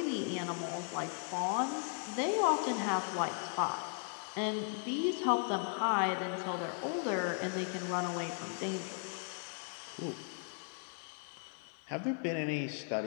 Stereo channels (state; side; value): silent; right; 53 dB below the other